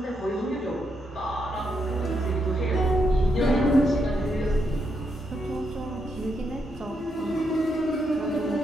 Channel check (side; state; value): both; normal; correlation 0.80